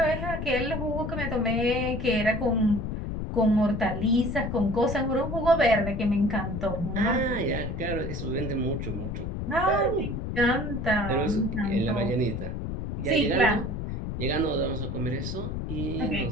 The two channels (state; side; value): noise; left; rumble, 4 dB below the sound